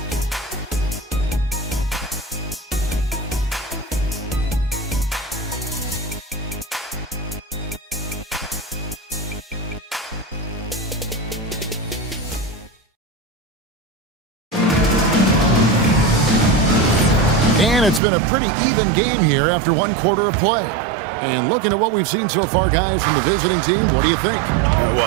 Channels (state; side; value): drops out; left; at 18.0 s